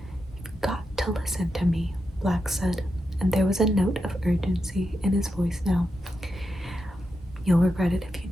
"You've got to listen to me," Black said, and there was a note of urgency in his voice now. "You'll regret it if you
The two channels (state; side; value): normal; both; correlation 0.86